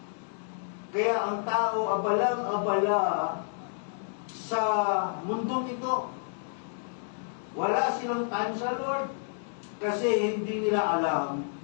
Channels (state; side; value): silent; right; digital silence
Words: Kaya ang tao abalang-abala sa mundong ito. Wala silang time sa Lord. Kasi hindi nila alam